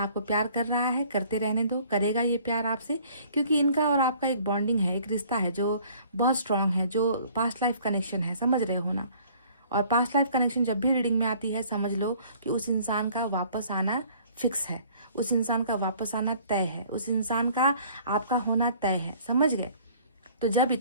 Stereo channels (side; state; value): both; inverted; correlation -0.55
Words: प्यार कर रहा है, करते रहने दो, करेगा ये प्यार आपसे, क्योंकि इनका और आपका एक बॉन्डिंग है, एक रिश्ता है जो बहुत स्ट्रांग है, जो पास्ट लाइफ कनेक्शन है, समझ रहे हो ना। और पास्ट लाइफ कनेक्शन जब भी रीडिंग में आती है, समझ लो कि उस इंसान का वापस आना फिक्स है, उस इंसान का वापस आना तय है, उस इंसान का आपका होना तय है, समझ गए। तो जब